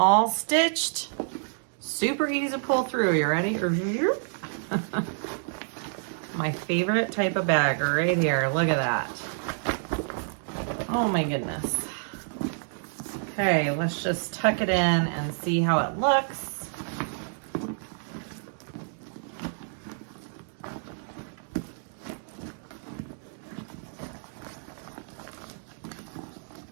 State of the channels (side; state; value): left; silent; digital silence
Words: stitched. Super easy to pull through. You ready? My favorite type of bag right here. Look at that. Oh my goodness. Okay, let's just tuck it in and see how it looks.